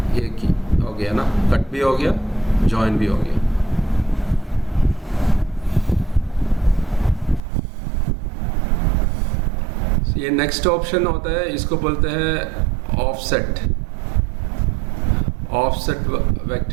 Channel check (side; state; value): left; drops out; at 7.4 s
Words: एक ही हो गया ना, कट भी हो गया ज्वाइन भी हो गया। ये नेक्स्ट ऑप्शन होता है, इसको बोलते हैं ऑफसेट। ऑफसेट